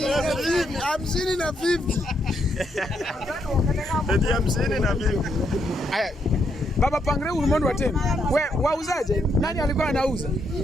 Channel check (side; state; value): both; normal; correlation 0.77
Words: na 50. Eti 50 na 50. Aya. Baba pangre ulimwengu wa tena. We wauzaje? Nani alikuwa anauza?